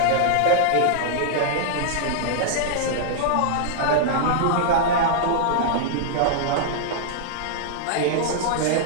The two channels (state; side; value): different; both; correlation -0.02